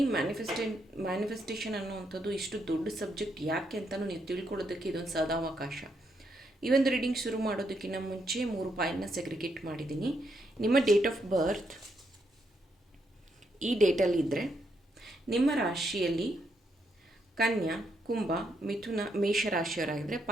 ಮ್ಯಾನಿಫೆಸ್ಟೇಷನ್ ಅನ್ನೋವಂಥದ್ದು ಇಷ್ಟು ದೊಡ್ಡ ಸಬ್ಜೆಕ್ಟ್ ಯಾಕೆ ಅಂತಲೂ ನೀವು ತಿಳ್ಕೊಳ್ಳೋದಕ್ಕೆ ಇದೊಂದು ಸದಾವಕಾಶ. ಈ ಒಂದು ರೀಡಿಂಗ್ ಶುರು ಮಾಡೋದಕ್ಕಿಂತ ಮುಂಚೆ 3 ಪಾಯಿಂಟ್ನ ಸೆಗ್ರಿಗೇಟ್ ಮಾಡಿದ್ದೀನಿ. ನಿಮ್ಮ ಡೇಟ್ ಆಫ್ ಬರ್ತ್ ಈ ಡೇಟಲ್ಲಿದ್ದರೆ ನಿಮ್ಮ ರಾಶಿಯಲ್ಲಿ ಕನ್ಯಾ, ಕುಂಭ, ಮಿಥುನ, ಮೇಷರಾಶಿಯವರಾಗಿದ್ದರೆ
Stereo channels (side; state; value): both; normal; correlation 0.78